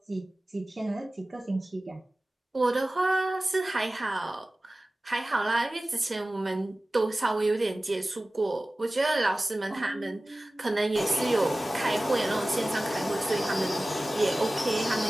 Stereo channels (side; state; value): both; normal; correlation 0.97